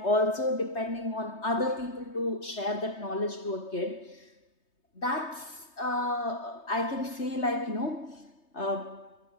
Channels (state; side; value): late; right; 3.3 ms